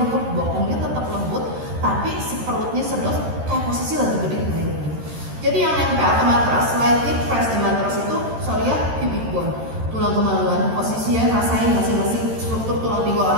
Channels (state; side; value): late; left; 13 ms